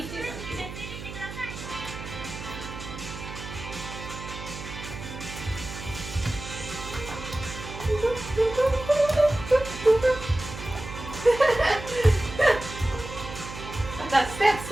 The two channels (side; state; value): right; noise; hum, 10 dB below the sound